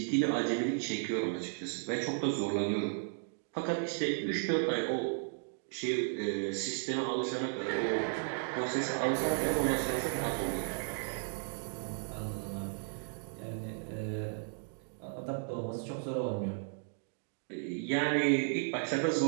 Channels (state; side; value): silent; left; digital silence